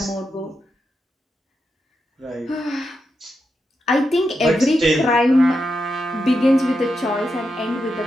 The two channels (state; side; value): normal; both; correlation 0.86